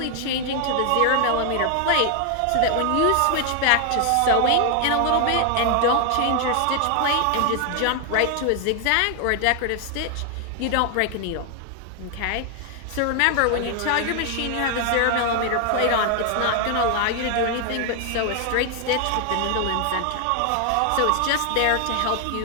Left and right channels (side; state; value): both; different; correlation 0.00